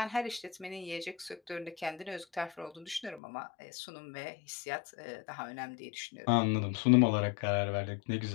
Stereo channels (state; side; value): drops out; right; at 3.2 s